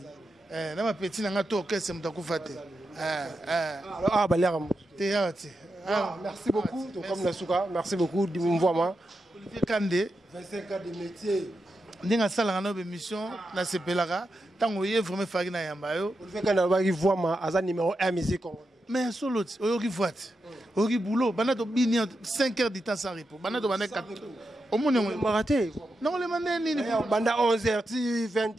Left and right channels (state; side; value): normal; both; correlation 0.87